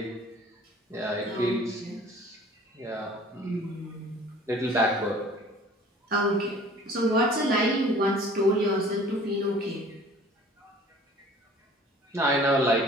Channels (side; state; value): both; normal; correlation 0.49